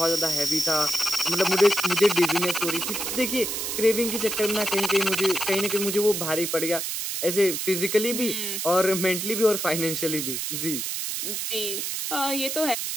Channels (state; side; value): noise; right; hiss, 3 dB below the sound